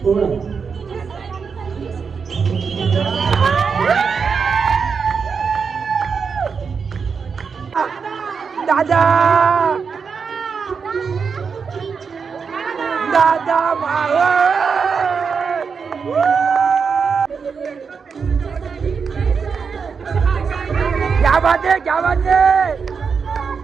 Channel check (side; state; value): left; quieter; 5.7 dB